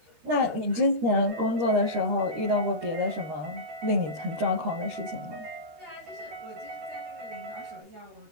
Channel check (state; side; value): late; left; 13 ms